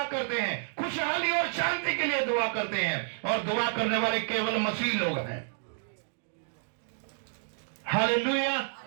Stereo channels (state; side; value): silent; left; digital silence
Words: करते हैं, खुशहाली और शांति के लिए दुआ करते हैं, और दुआ करने वाले केवल मसीह लोग हैं। Hallelujah,